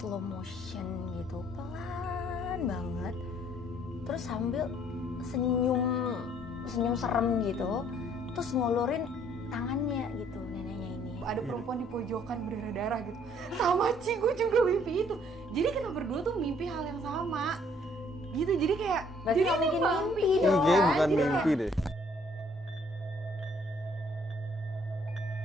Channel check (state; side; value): normal; both; correlation 0.62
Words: motion gitu, pelan banget, terus sambil senyum serem gitu, terus ngulurin tangannya gitu neneknya ini. Ada perempuan di pojokan berdarah-darah gitu. Sama Ci, gue juga mimpi itu. Jadi kita berdua tuh mimpi hal yang sama gitu, jadi kayak berarti jadi bikin mimpi Ini dong. kayak bukan Jadi mimpi deh.